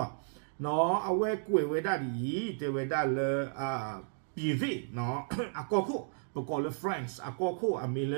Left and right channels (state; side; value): silent; left; digital silence